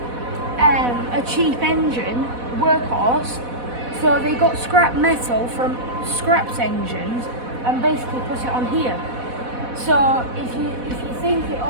cheap engine, workhorse. So they got scrap metal from scrapped engines and basically put it on here. So if you think it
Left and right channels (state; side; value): late; left; 4.1 ms